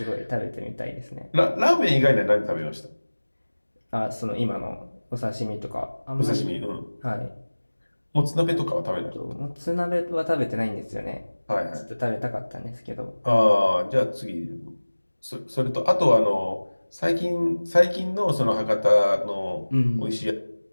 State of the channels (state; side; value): inverted; both; correlation -1.00